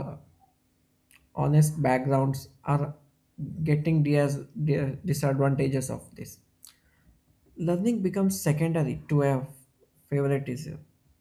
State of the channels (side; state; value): both; identical; correlation 1.00